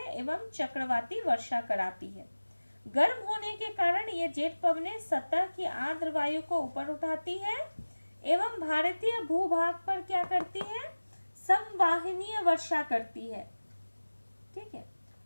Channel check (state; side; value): inverted; both; correlation -1.00